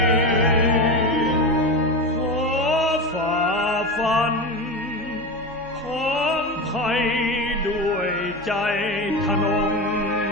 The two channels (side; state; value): both; normal; correlation 0.21